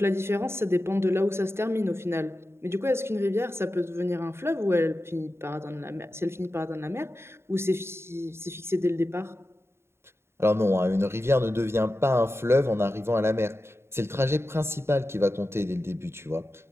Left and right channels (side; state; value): left; late; 0.12 ms